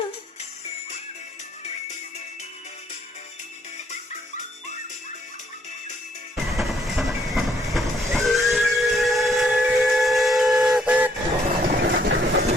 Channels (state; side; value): normal; both; correlation 0.68